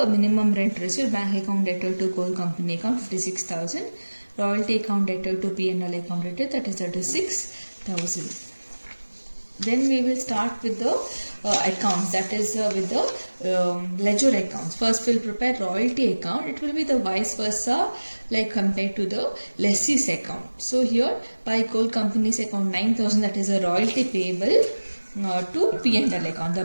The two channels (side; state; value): both; inverted; correlation -1.00